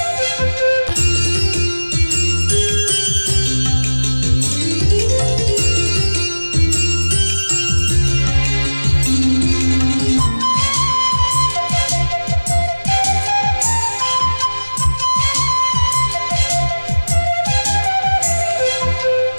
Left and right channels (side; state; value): both; inverted; correlation -1.00